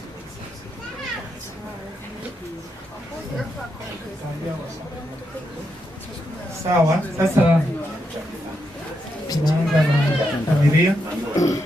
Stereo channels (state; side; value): normal; both; correlation 0.82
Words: Sawa, sasa tunaanza na familia.